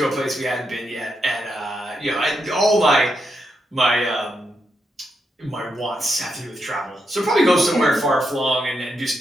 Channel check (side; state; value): both; normal; correlation 0.83